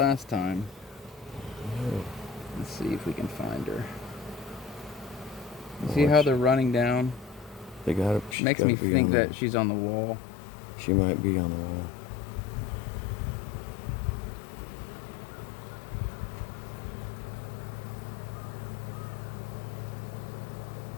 time. Let's see if we can find her. You see how they're running down? They gotta. Makes me think that she's on the wall. She might be on the wall.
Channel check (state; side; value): drops out; right; at 8.3 s